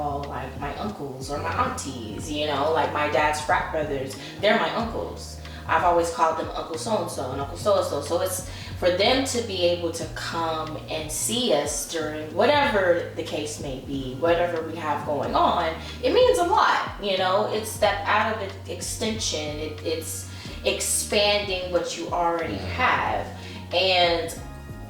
like my uncles or my aunties, you know, like my dad's frat brothers, they're my uncles. I've always called them Uncle so-and-so and Uncle so-and-so. So it's for them to be able to come and see us during whatever the case may be, whatever we have going on, it means a lot, you know. It's that out of extension, it's expanding what you already have. And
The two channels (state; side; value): identical; both; correlation 1.00